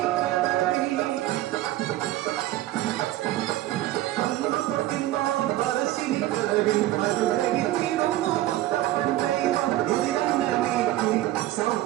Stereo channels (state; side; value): quieter; left; 15.3 dB